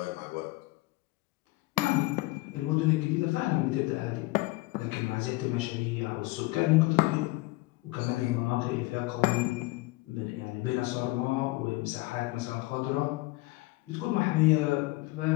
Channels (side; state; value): right; quieter; 21.6 dB